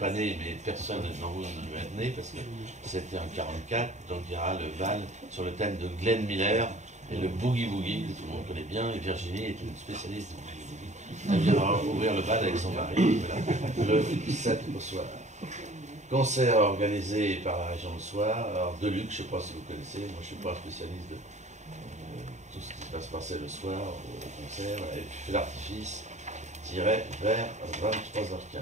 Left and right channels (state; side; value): late; left; 0.34 ms